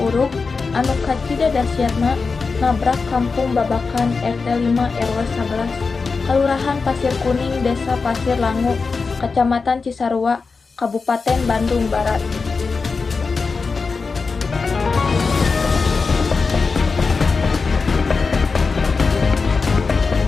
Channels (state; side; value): quieter; right; 4.6 dB